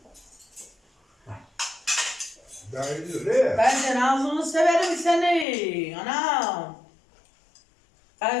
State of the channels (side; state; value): right; drops out; at 5.5 s